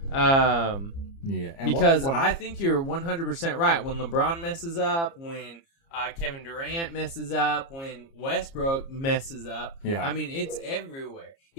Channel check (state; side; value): late; right; 30 ms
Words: Because I think you're 100% right. When LeBron messes up, when Kevin Durant messes up, when Westbrook messes up, I mean, it's everywhere.